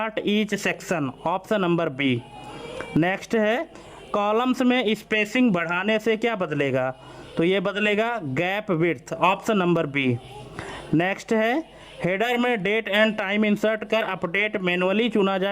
each section. Option number B. Next है कॉलम्स में स्पेसिंग बढ़ाने से क्या बदलेगा? तो ये बदलेगा gap width. Option number B. Next है हेडर में डेट एंड टाइम इंसर्ट कर अपडेट मैनुअली चुना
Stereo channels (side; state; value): both; identical; correlation 1.00